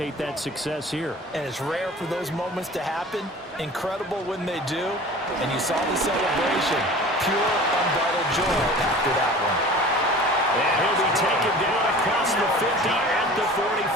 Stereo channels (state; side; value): normal; both; correlation 0.41